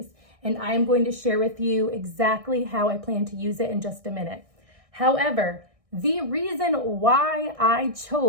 And I am going to share with you exactly how I plan to use it in just a minute. However, the reason why I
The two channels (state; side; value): late; left; 1.6 ms